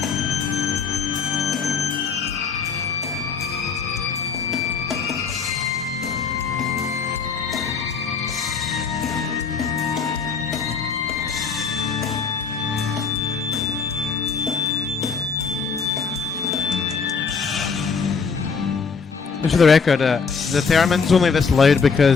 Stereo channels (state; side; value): quieter; right; 5.5 dB